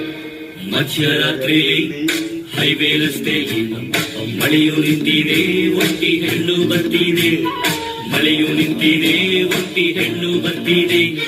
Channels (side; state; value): both; identical; correlation 1.00